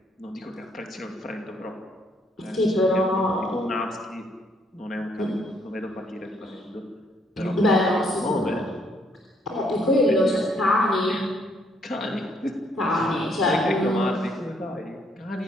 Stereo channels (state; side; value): normal; both; correlation 0.69